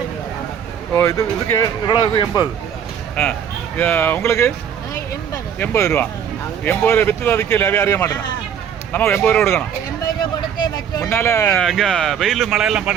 ഓ, ഇത് ഇളവ് 80. உங்களுக்கு 80 രൂപ. 80 രൂപ வித்து தான் விற்கல. அறிய மாட்டேன். நம்ம 80 ரூபா கொடுக்கணும். முன்னால இங்கே வெயில் மழையெல்லாம்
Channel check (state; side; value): quieter; left; 8.4 dB